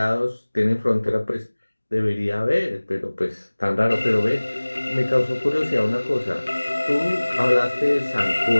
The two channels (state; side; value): inverted; both; correlation -1.00